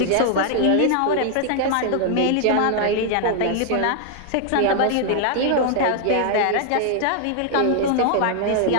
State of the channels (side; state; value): both; different; correlation 0.00